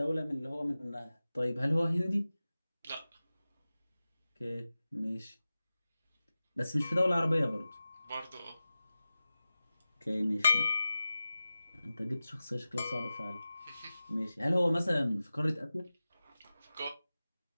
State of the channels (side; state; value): both; inverted; correlation -0.95